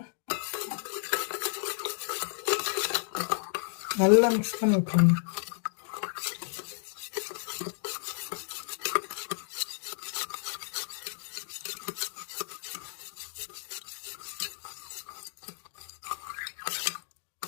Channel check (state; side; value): silent; right; digital silence